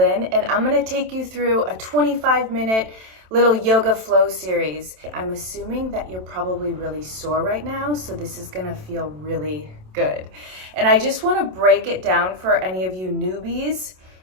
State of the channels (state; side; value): late; left; 27 ms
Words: and I'm going to take you through a 25-minute little yoga flow series. I'm assuming that you're probably really sore right now, so this is going to feel really good. And I just want to break it down for any of you newbies.